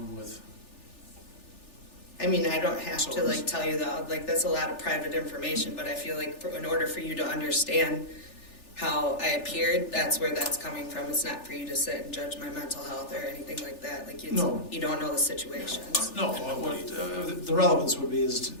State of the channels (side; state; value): right; late; 3.4 ms